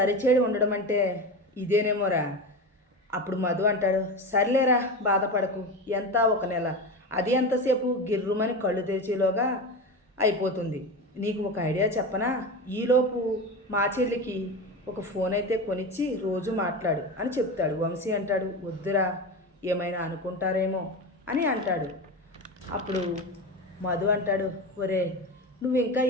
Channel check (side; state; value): both; normal; correlation 0.23